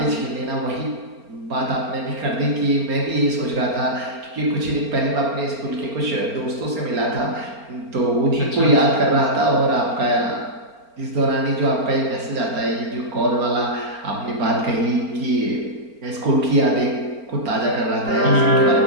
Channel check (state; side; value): late; left; 4.4 ms